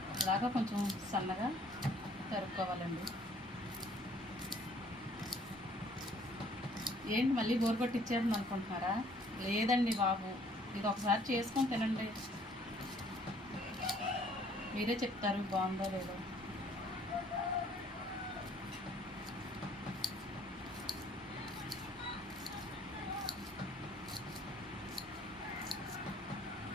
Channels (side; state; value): both; normal; correlation 0.59